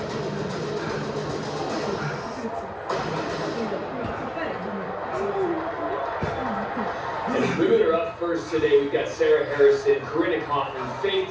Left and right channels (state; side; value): identical; both; correlation 1.00